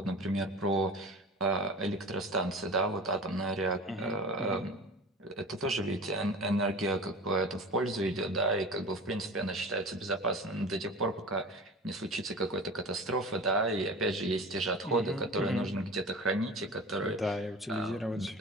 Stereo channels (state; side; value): normal; both; correlation 0.36